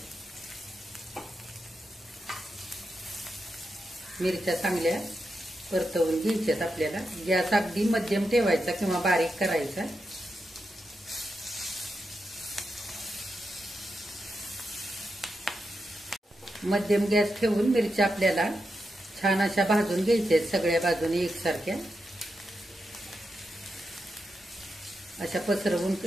मिरच्या चांगल्या परतवून घ्यायच्यात आपल्याला. गॅस अगदी मध्यम ठेवायचा किंवा बारीक करायचा. मध्यम गॅस ठेवून मिरच्या आपल्याला छान अशा भाजून घ्यायच्या सगळ्या बाजूने एकसारख्या. अशा पसरवून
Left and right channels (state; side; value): normal; both; correlation 0.86